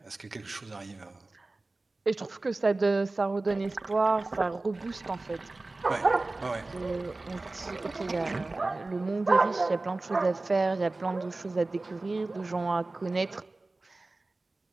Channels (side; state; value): left; quieter; 3.2 dB